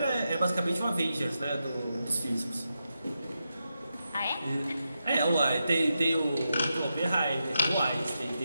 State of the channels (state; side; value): inverted; both; correlation -0.87